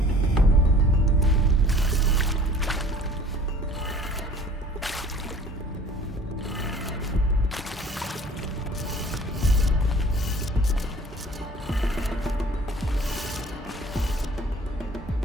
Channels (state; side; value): normal; both; correlation 0.49